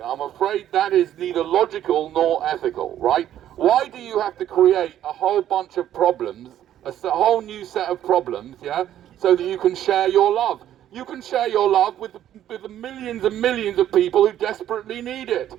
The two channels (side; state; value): left; quieter; 11.5 dB